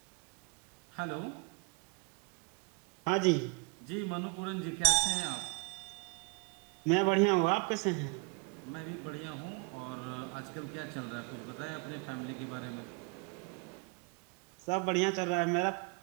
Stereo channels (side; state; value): left; quieter; 31.7 dB